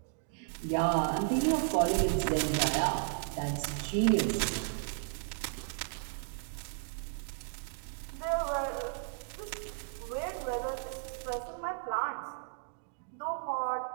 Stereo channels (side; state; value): left; silent; digital silence